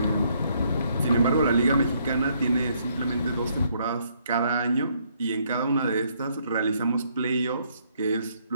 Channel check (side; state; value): both; inverted; correlation -0.70